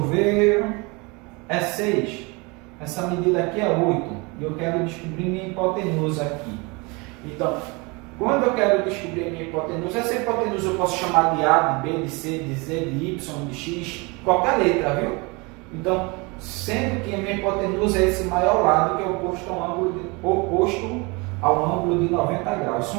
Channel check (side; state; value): left; quieter; 27.6 dB